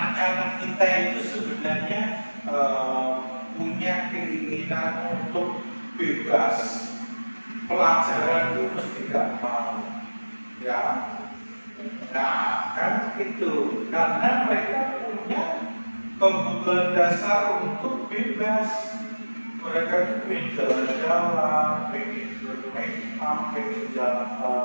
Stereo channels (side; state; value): both; inverted; correlation -1.00